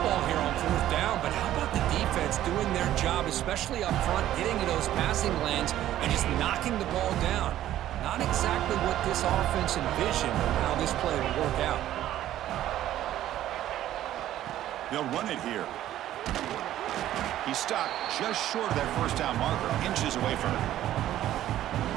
here on 4th down, but how about the defense doing their job, especially up front, getting to those passing lanes and just knocking the ball down? Not exactly what this offense envisioned or how this play would work out. They'll run it here. He stopped just short of that first down marker, inches away from it.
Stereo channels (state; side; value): quieter; left; 12.9 dB